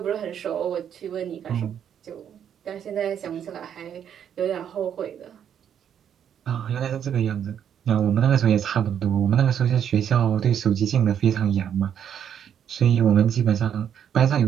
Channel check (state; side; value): quieter; left; 8.9 dB